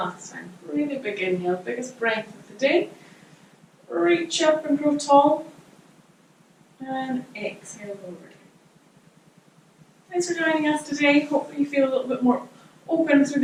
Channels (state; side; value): identical; both; correlation 1.00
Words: time. Really big inhale, biggest breath of the day. Reach up and grow tall. And exhale over. Thanks for joining us today. Hopefully you feel a little bit more open through